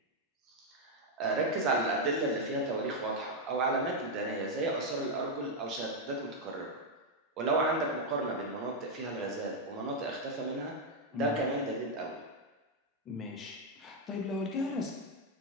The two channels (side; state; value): both; normal; correlation 0.01